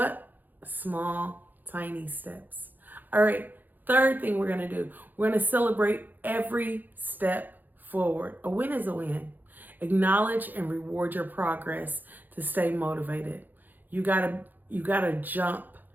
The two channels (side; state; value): left; late; 0.086 ms